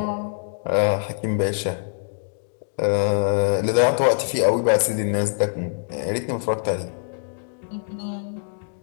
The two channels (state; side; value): silent; right; digital silence